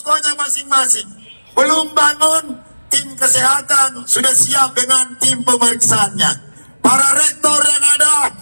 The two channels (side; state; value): both; inverted; correlation -1.00